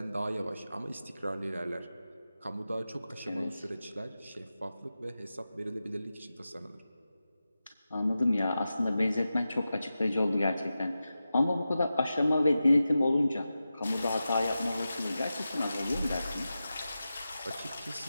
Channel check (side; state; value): both; inverted; correlation -0.93